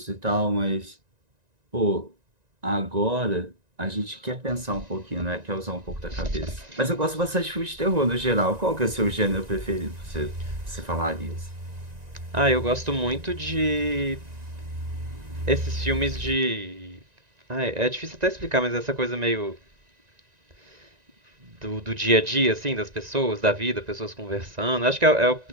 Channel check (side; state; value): left; late; 1.9 ms